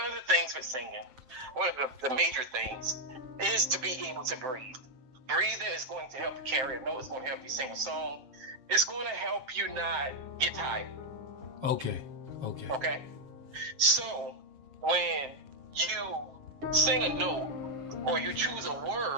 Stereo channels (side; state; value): left; late; 7.7 ms